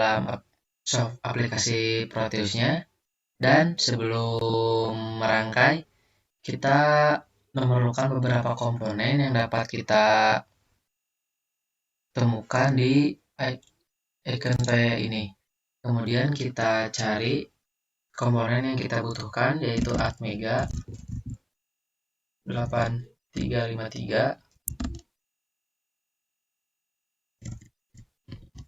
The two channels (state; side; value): identical; both; correlation 1.00